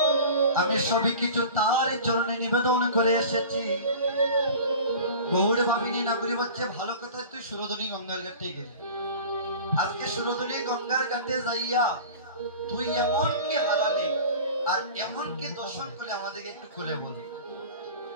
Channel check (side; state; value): both; inverted; correlation -0.38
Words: আমি সবই কিছু তার চরণে নিবেদন করে এসেছি গৌড় ভাবিনি নাগরি বাচ্চা ভালো কথা তুই সুরধনী গঙ্গার ঘাটে গেলি আজকে সুরধনী গঙ্গার ঘাটে যাইয়া তুই এমন কি হারালি আর এমন কি দর্শন করলে আমাদেরকে একটু খুলে বল